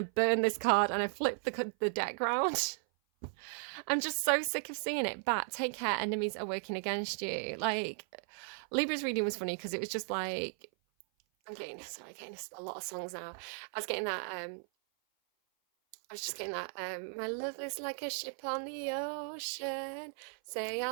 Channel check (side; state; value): left; silent; 54 dB below the other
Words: to burn this card, and I flipped the deck round. I'm just so sick of seeing it. But take care, enemies are working against you. Like, Libra's reading was funny because it was just like, I'm getting a lot of songs now. I was just getting that, my love is like a ship on the ocean. Say I